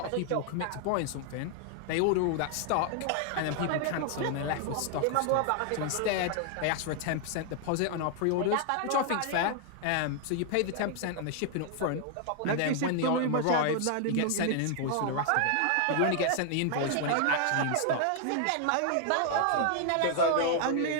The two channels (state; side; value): different; both; correlation 0.00